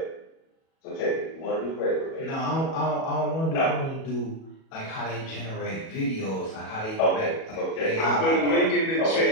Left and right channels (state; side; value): late; right; 37 ms